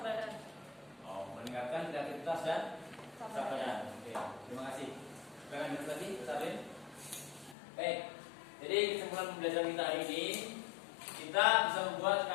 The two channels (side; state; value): right; drops out; at 7.6 s